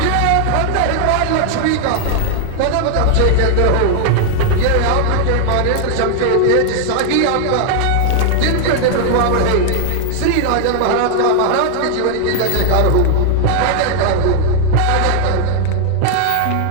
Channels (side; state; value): both; different; correlation 0.00